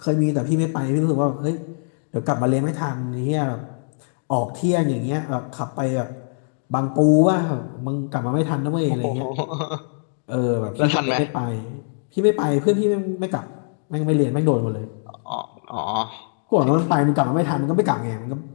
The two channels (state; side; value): silent; right; 64 dB below the other